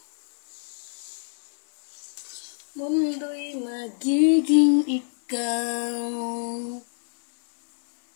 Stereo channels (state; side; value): silent; right; digital silence